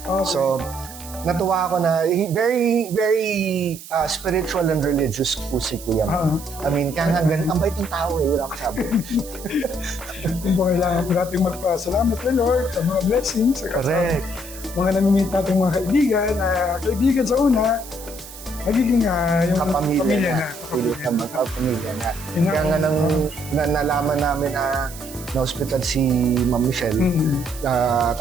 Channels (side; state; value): right; noise; hiss, 15 dB below the sound